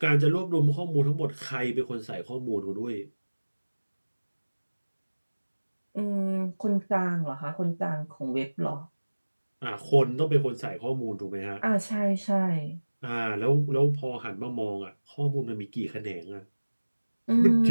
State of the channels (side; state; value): both; inverted; correlation -1.00